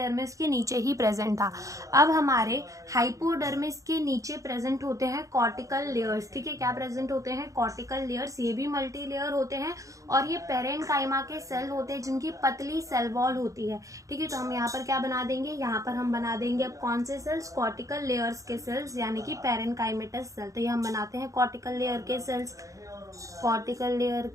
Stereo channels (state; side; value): late; left; 0.16 ms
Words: के नीचे ही प्रेजेंट था। अब हमारे हाइपोडर्मिस के नीचे प्रेजेंट होते हैं कॉर्टिकल लेयर्स। ठीक है, क्या प्रेजेंट होते हैं? Cortical layers. ये भी मल्टी लेयर होते हैं। और ये पेरेन्काइमा के सेल होते हैं जिनकी पतली सेल वॉल होती है। ठीक है, तो हम यहाँ पर क्या बना देंगे? यहाँ पर हम बना देंगे अब कौन से सेल्स? कॉर्टिकल लेयर्स के सेल्स, यानी कि पेरेन्काइमेटस सेल। तो ये हम बनाते हैं कॉर्टिकल लेयर के सेल्स। कॉर्टिकल लेयर